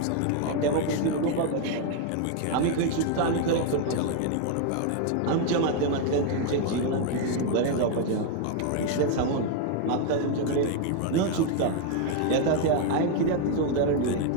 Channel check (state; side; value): different; both; correlation 0.01